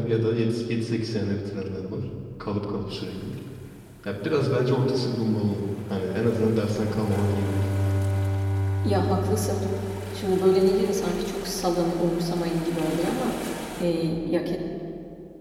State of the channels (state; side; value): identical; both; correlation 1.00